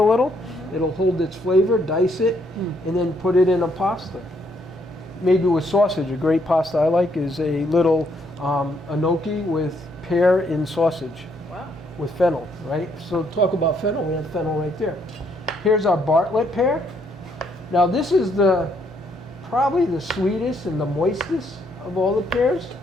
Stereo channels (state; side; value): normal; both; correlation 0.71